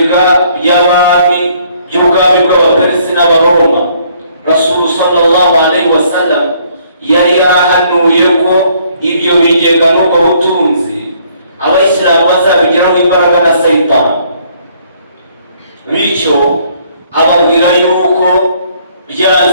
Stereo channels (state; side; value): inverted; both; correlation -0.64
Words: by'abami by'ubwami bw'Abaperesi n'Abaroma. Rasul sallallahu alaihi wasallam yari yarahanuye ko ibyo bigega n'ubwo butunzi abayisilamu bazabigiraho imbaraga na Sayitani. Bityo ababwira yuko